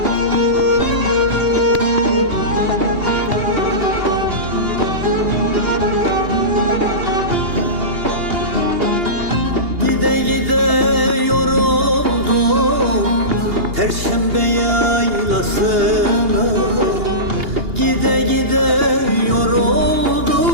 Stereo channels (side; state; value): left; late; 2.8 ms